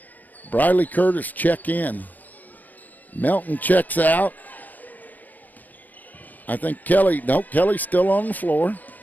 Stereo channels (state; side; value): late; right; 0.082 ms